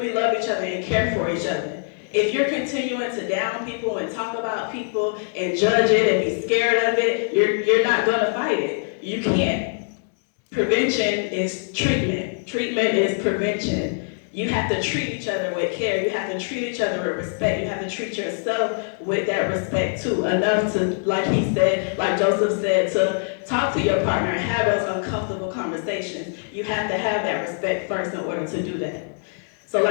love each other and care for each other. If you're continuing to down people and talk about people and judge it and be scared of it, you're not gonna fight it. You can't. Prevention is treatment. Treatment is prevention. You have to treat each other with care. You have to treat each other with respect. You have to treat yourself with that respect too. Enough to, like he said, like Joseph said, to talk to your partner and have those uncomfortable conversations. You have to have that respect first in order to do that. So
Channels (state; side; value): silent; right; 63 dB below the other